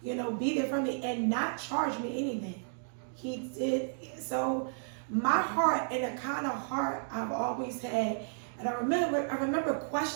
you know, be there for me and not charge me anything. He did. So my heart, and the kind of heart I've always had, and I remember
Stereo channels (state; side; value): silent; left; digital silence